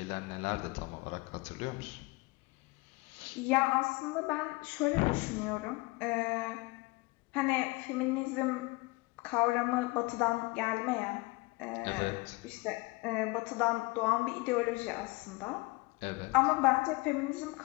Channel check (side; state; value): right; quieter; 24.4 dB